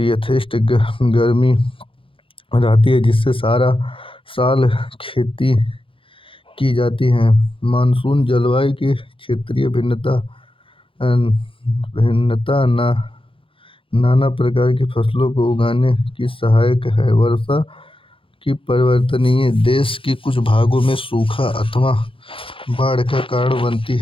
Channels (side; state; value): right; late; 0.25 ms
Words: यथेष्ट गर्मी रहती है, जिससे सारा साल खेती की जाती है। मानसून जलवायु की क्षेत्रीय भिन्नता नाना प्रकार की फसलों को उगाने की सहायक है। वर्षा की परिवर्तनीय देश के कुछ भागों में सूखा अथवा बाढ़ का कारण बनती